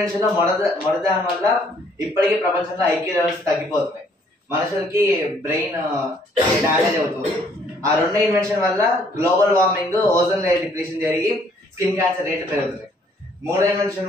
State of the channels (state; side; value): normal; both; correlation 0.64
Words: మొదటి దాని వల్ల ఇప్పటికీ ప్రపంచంలో ఐక్యూ లెవెల్స్ తగ్గిపోతున్నాయి, మనుషులకి బ్రెయిన్ డ్యామేజ్ అవుతుంది. ఆ 2 ఇన్వెన్షన్ వల్ల global warming, ozone layer depletion జరిగి స్కిన్ క్యాన్సర్ రేట్లు పెరుగుతున్నాయి. 3